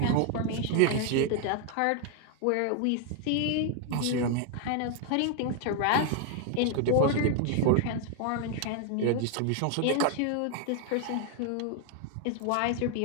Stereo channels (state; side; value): different; both; correlation 0.01